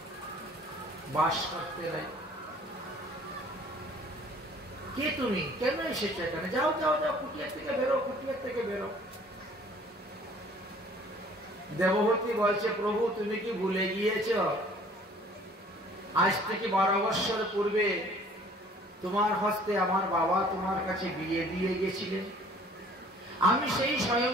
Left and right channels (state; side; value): normal; both; correlation 0.54